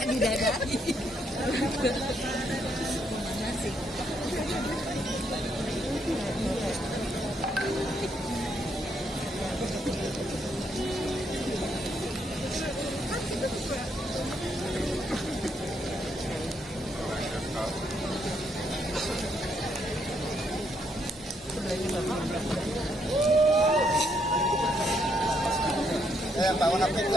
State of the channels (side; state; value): both; normal; correlation 0.75